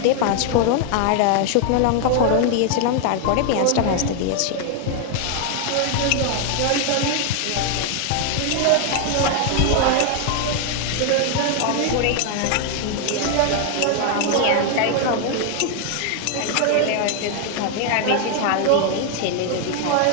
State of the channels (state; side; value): different; both; correlation 0.00